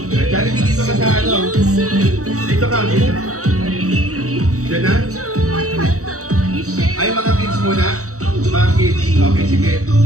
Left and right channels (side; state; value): left; late; 0.65 ms